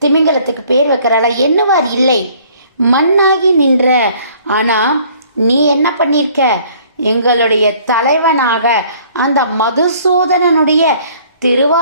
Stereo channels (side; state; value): both; inverted; correlation -0.57